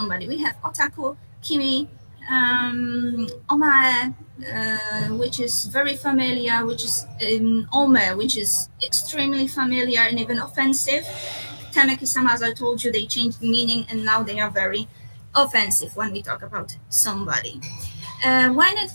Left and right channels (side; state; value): both; inverted; correlation -1.00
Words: we have otaku, kimi, omae, which is very familiar, which is ome, which is extremely familiar and even offensive. Tanaki-sama, as I told you, they changed meaning and now they are very offensive when we talk about somebody. When it